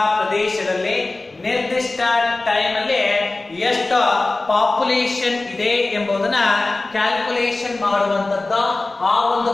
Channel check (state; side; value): quieter; right; 3.1 dB